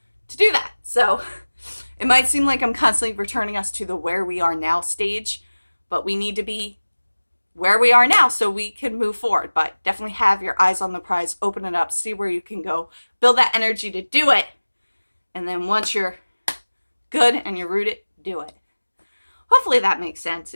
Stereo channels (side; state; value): both; inverted; correlation -1.00